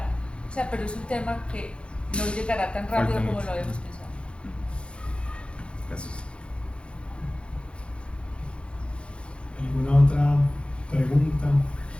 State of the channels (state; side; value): late; right; 0.057 ms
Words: O sea, pero es un tema que no llegará tan rápido como lo habíamos pensado. Gracias. ¿Alguna otra pregunta?